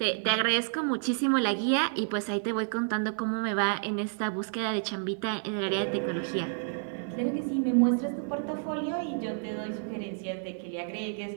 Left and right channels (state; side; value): silent; left; 58 dB below the other